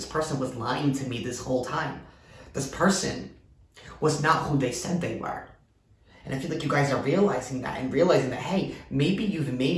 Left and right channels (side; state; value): both; identical; correlation 1.00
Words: person was lying to me this whole time. This person was not who they said they were. And I feel like you guys are realizing that and realizing that, hey, maybe you've